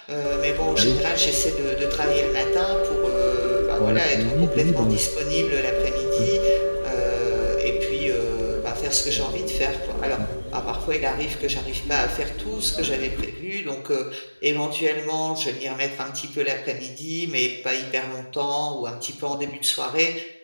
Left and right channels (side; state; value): both; inverted; correlation -1.00